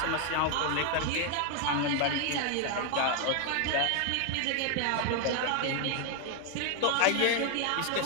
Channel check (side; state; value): both; different; correlation 0.01